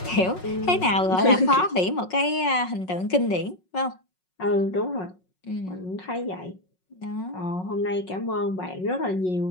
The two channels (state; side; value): late; right; 5.5 ms